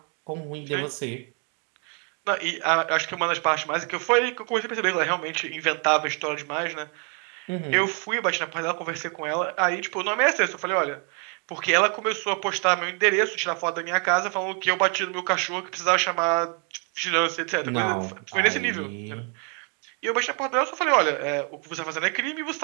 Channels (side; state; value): left; quieter; 36.2 dB